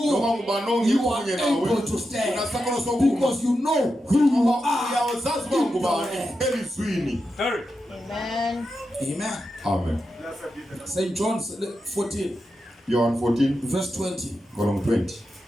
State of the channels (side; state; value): both; normal; correlation 0.88